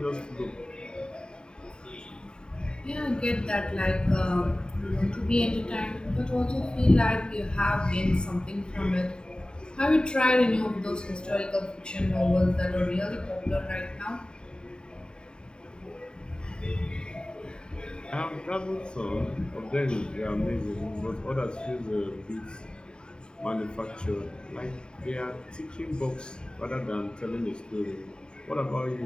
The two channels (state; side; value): late; right; 0.049 ms